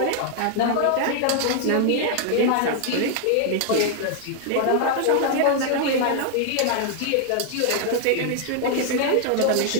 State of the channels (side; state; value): both; different; correlation 0.00